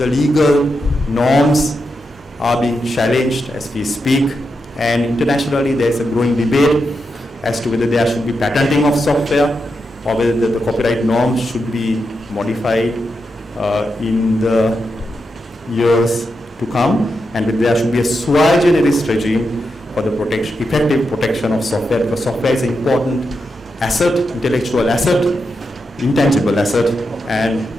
legal norms are being challenged as we speak, and internationally there is a growing debate as to whether there should be patenting of software or whether the copyright norms should be modified in the years to come, and whether there should be a sui generis regime for the effective protection of software, because software is an important asset, intellectual asset, intangible asset, and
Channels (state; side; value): normal; both; correlation 0.86